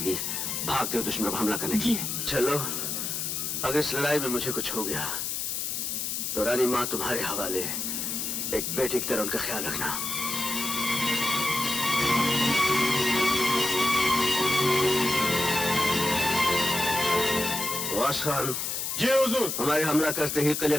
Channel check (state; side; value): noise; left; hiss, 2 dB below the sound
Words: भागते हो दुश्मन पर हमला करने की। चलो, अगर इस लड़ाई में मुझे कुछ हो गया तो रानी माँ तुम्हारे हवाले, एक बेटी की तरह उनका ख्याल रखना। वास खान। जी हुजूर। हमारे हमला करते ही किले